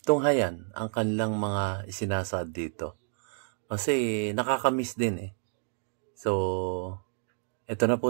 tunghayan ang kanilang mga isinasad dito kasi nakakamiss din eh. So, eto na po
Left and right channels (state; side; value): silent; left; digital silence